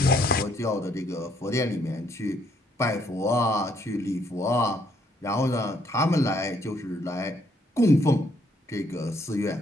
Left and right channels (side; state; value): both; normal; correlation 0.69